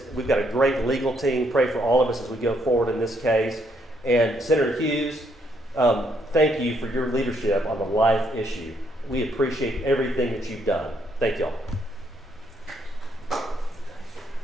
we've got a great legal team. Pray for all of us as we go forward in this case. And Senator Hughes, thank you for your leadership on the life issue. We appreciate everything that you've done. Thank y'all.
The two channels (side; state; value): both; normal; correlation 0.72